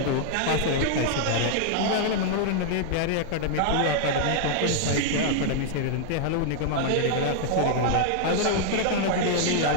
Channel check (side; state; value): both; different; correlation 0.00